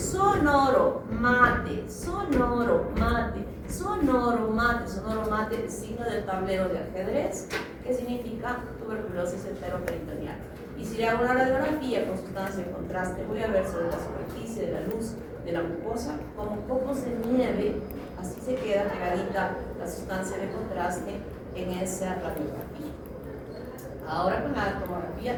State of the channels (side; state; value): both; identical; correlation 1.00